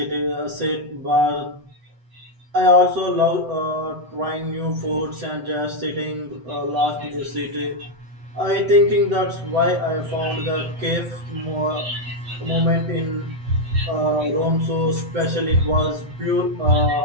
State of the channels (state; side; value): late; left; 8.0 ms